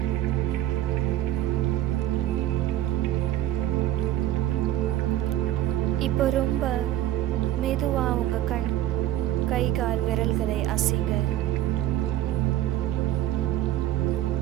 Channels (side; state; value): left; quieter; 13.5 dB